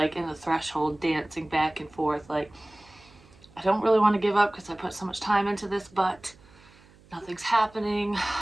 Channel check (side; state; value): right; noise; hum, 27 dB below the sound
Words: in the threshold, dancing back and forth, like, I don't really want to give up because I put so much time into this, but nothing's happening.